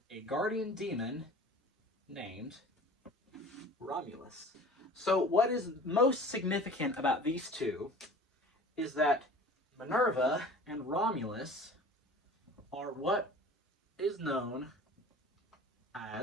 a guardian demon named Romulus. So what is most significant about these two is that Minerva and Romulus are what is known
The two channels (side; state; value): both; normal; correlation 0.42